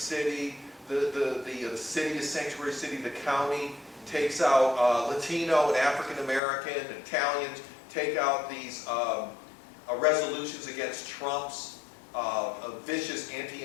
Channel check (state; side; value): drops out; right; at 6.4 s